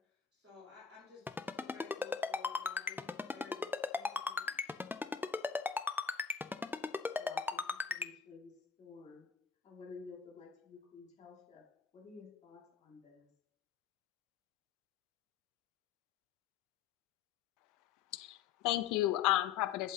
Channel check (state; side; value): quieter; right; 7.1 dB